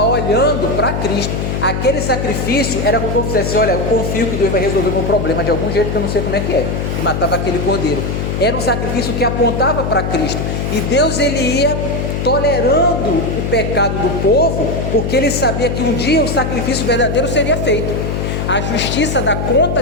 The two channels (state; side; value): noise; left; hum, 2 dB below the sound